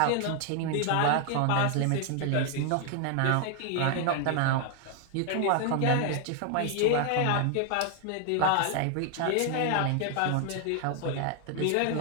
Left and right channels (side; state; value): both; different; correlation 0.00